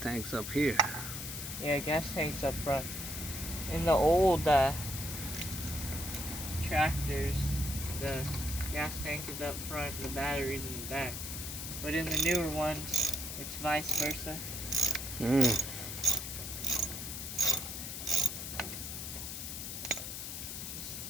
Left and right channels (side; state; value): left; noise; hiss, 6 dB below the sound